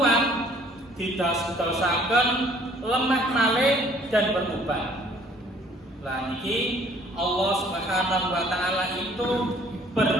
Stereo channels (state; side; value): normal; both; correlation 0.57